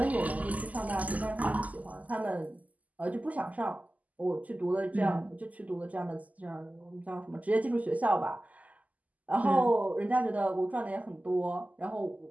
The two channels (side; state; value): left; late; 0.076 ms